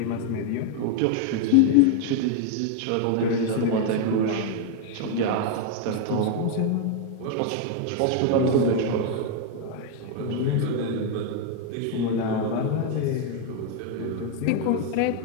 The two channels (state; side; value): different; both; correlation 0.01